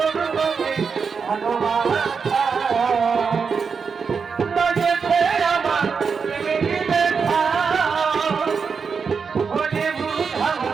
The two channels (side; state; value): left; quieter; 5.7 dB